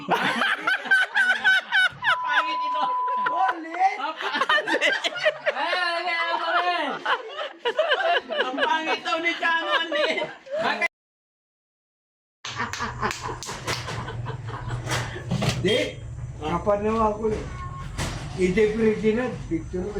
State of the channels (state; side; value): identical; both; correlation 1.00